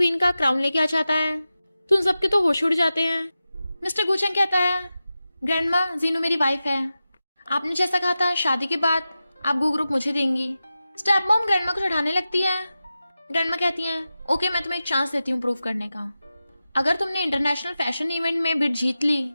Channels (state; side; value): inverted; both; correlation -0.93